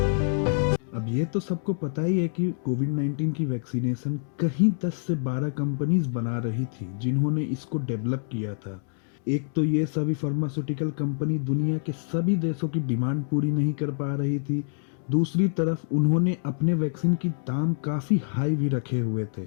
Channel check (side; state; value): right; silent; digital silence